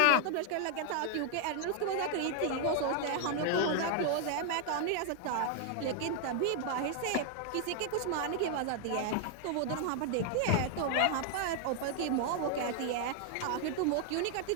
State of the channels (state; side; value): different; both; correlation 0.00